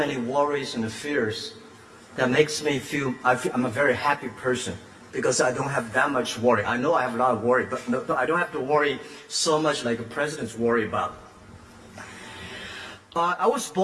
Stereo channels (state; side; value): identical; both; correlation 1.00